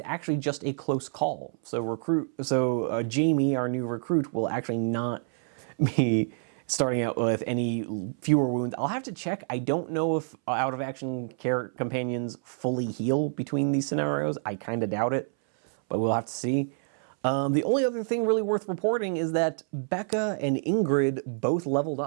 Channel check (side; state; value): left; silent; 60 dB below the other